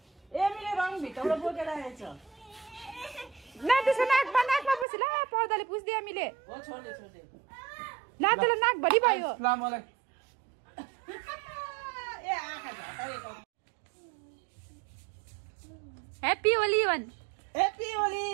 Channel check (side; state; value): left; drops out; at 4.9 s